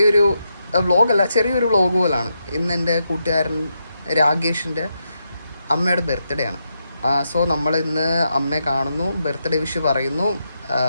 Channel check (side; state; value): both; inverted; correlation -0.83